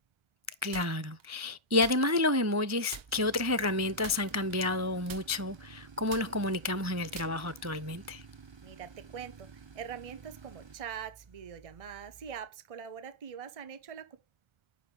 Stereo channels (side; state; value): left; late; 1.4 ms